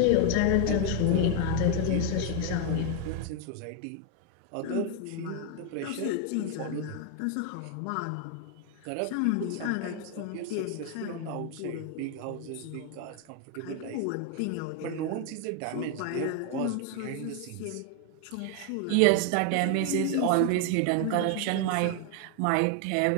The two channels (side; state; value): both; different; correlation 0.01